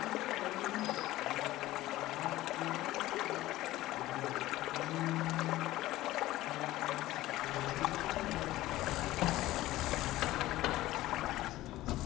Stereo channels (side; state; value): right; quieter; 16.3 dB